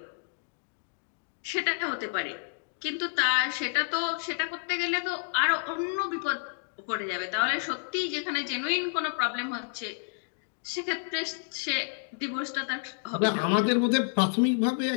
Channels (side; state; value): right; silent; digital silence